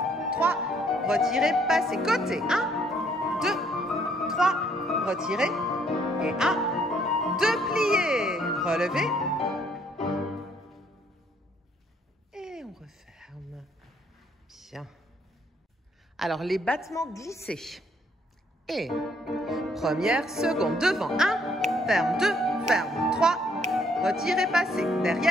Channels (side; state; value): both; normal; correlation 0.67